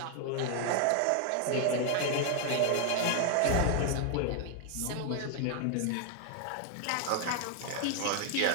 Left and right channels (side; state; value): both; different; correlation 0.00